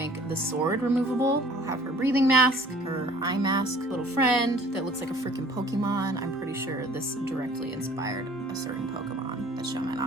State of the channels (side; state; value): both; normal; correlation 0.53